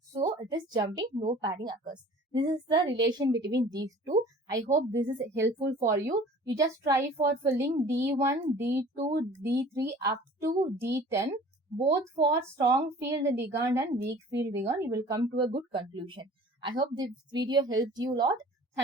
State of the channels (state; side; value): normal; both; correlation 0.47